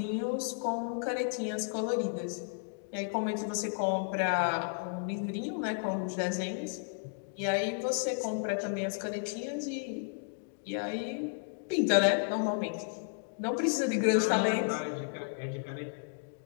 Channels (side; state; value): right; silent; digital silence